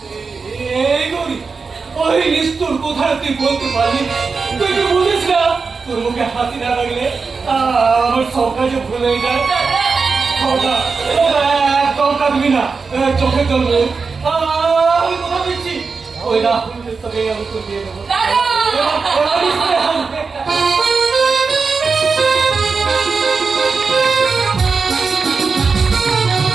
এই গরি ওই নিষ্ঠুর কোথায় তুই বলতে পারলি? তুই কি বুঝিস না তোর মুখে হাসি না লাগলে আমার সব কাজে ভুল হয়ে যায়। একদম কাঁদবি না, চোখে চলবে। আমি কথা দিচ্ছি ওই রাহুলের সঙ্গে আমি তো দিয়ে দেবো।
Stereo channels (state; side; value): quieter; left; 4.8 dB